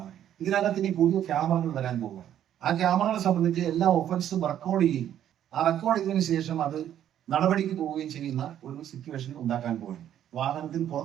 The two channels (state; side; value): quieter; left; 10.7 dB